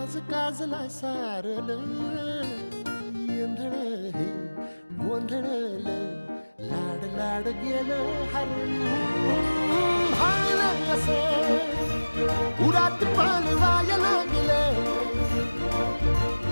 काजला सारल येंधळ हे गोंधळल लाड लाड गेलं हरून हायलं कसं उरात पान वाया लागलं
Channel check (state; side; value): inverted; both; correlation -1.00